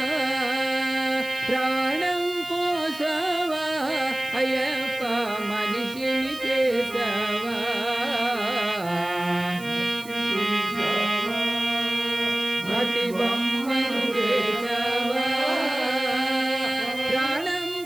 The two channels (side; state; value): right; noise; hiss, 18 dB below the sound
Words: ప్రాణం పోసావా అయ్యప్ప మనిషిని చేసావా మట్టి బొమ్మను చేసావా ప్రాణం